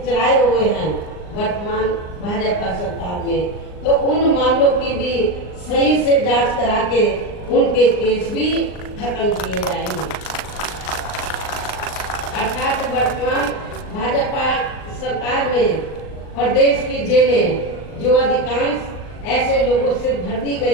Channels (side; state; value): right; late; 39 ms